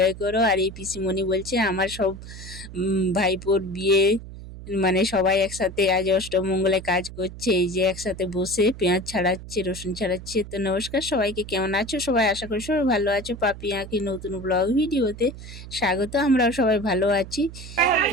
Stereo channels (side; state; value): right; noise; hum, 13 dB below the sound